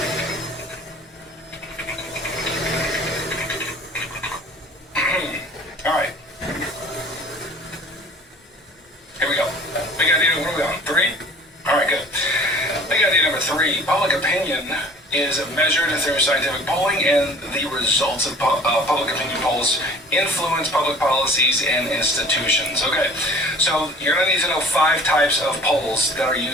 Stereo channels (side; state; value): both; normal; correlation 0.47